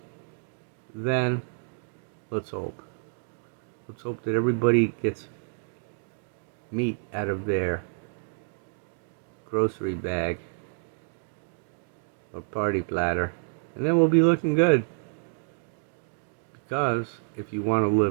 then let's hope. Let's hope that everybody gets meat out of their grocery bag or party platter, and then we'll be looking good. Because if you want to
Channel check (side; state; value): left; silent; digital silence